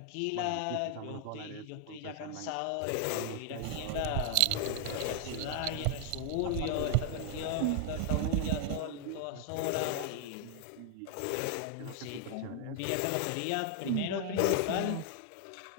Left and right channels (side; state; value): both; different; correlation 0.00